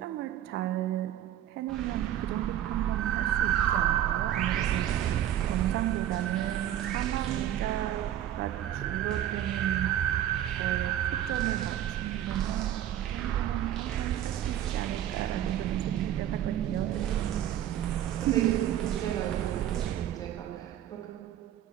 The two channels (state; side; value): quieter; left; 11.6 dB